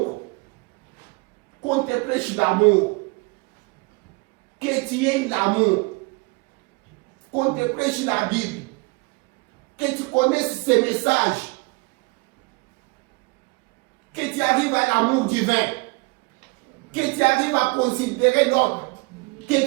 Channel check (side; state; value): left; quieter; 27.8 dB